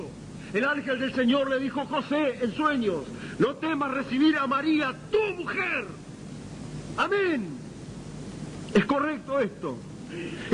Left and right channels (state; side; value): identical; both; correlation 1.00